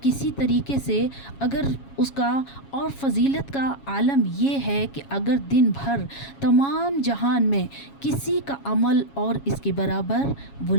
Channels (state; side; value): late; right; 7.3 ms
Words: तरीके से अगर उसका और फ़जीलत का आलम ये है कि अगर दिन भर तमाम जहान में किसी का अमल और इसके बराबर